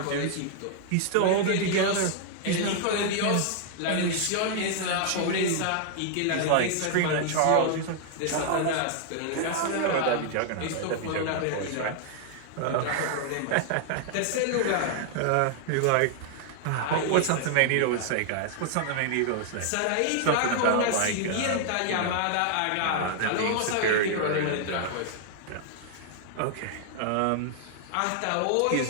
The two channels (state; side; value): different; both; correlation -0.01